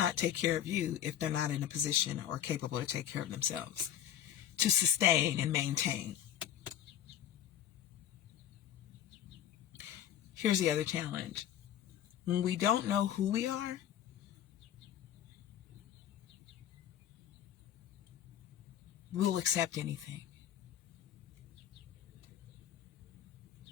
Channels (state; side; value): quieter; right; 10.6 dB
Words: take care of you if they're not in a position or capable to take care of themselves, to sustain and maintain. Here's the other challenge. When we don't know who we are, we'll accept anything.